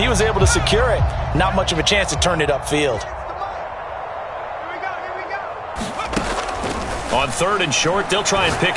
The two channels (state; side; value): identical; both; correlation 1.00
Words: was able to secure it, not much of a chance to turn it upfield. On 3rd and short, they'll try and